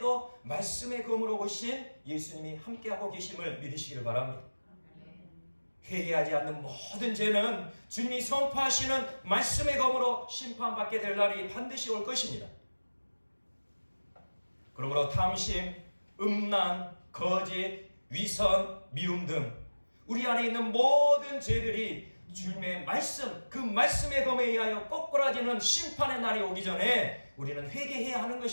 말씀의 검으로 오신 예수님이 함께하고 계심을 믿으시길 바랍니다. 회개하지 않는 모든 죄는 주님이 선포하시는 말씀의 검으로 심판받게 될 날이 반드시 올 것입니다. 그러므로 탐심, 음란, 거짓, 위선, 미움 등 우리 안에 있는 모든 죄들이 주님의 말씀, 그 말씀의 검에 의하여 꼬꾸라지는 심판의 날이 오기 전에 우리는 회개해야 하는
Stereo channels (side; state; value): both; inverted; correlation -1.00